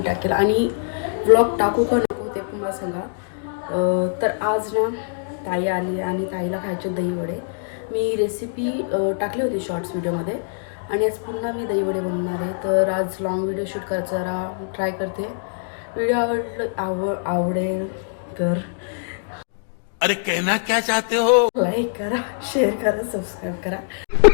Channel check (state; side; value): silent; right; digital silence